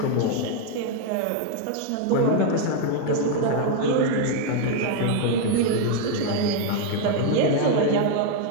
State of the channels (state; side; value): different; both; correlation 0.00